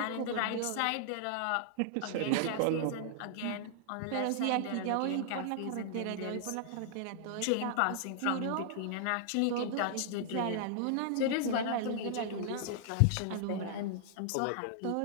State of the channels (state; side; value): different; both; correlation -0.01